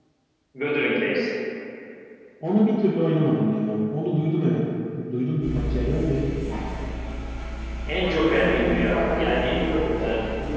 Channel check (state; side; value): identical; both; correlation 1.00